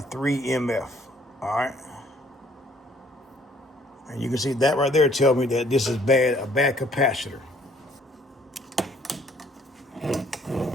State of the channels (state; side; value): normal; both; correlation 0.61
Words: 3 MF, all right? And you can see that right there tell me that this is a bad capacitor.